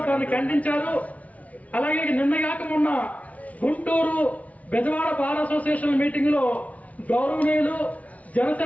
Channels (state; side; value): late; right; 0.069 ms